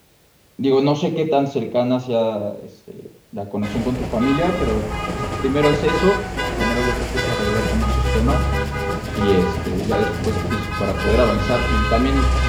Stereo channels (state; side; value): identical; both; correlation 1.00